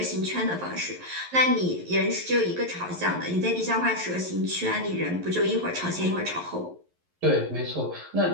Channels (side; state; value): left; late; 11 ms